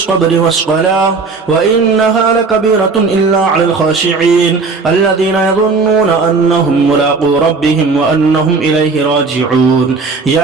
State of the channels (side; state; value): left; quieter; 4.3 dB